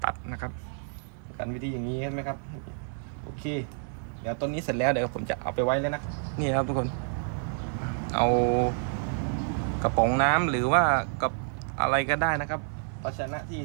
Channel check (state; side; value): silent; left; 59 dB below the other